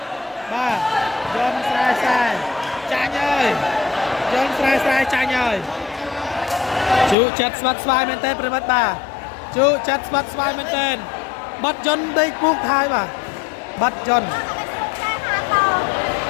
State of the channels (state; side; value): drops out; right; at 7.2 s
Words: ba John sai sai chanh ơi John sai chanh ơi chú chặt bắt sai men tên mất ba chú chặt bắt sai men tên bắt John đây buông thai mà bắt John